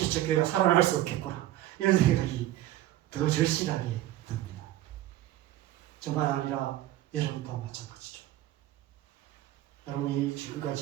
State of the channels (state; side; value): quieter; left; 14.4 dB